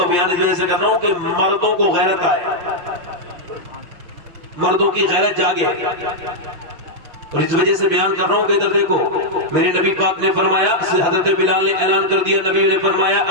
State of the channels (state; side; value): late; left; 5.8 ms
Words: بیان اس وجہ سے کر رہا ہوں کہ مردوں کو غیرت آئے، مردوں کی غیرت جاگے، اور اس وجہ سے بیان کر رہا ہوں کہ ادھر دیکھو، میرے نبی پاک نے فرمایا، حضرت بلال نے اعلان کر دیا، نبی نے فرمایا